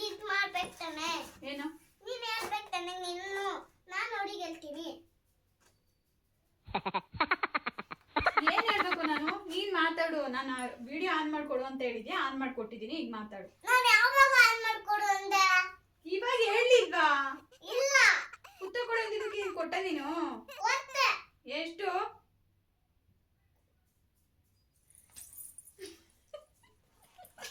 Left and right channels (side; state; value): both; identical; correlation 1.00